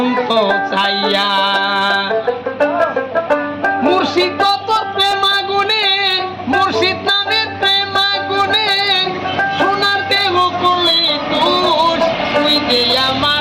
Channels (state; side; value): identical; both; correlation 1.00